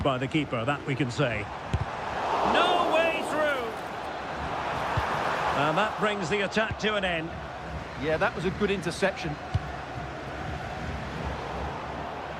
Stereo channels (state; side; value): identical; both; correlation 1.00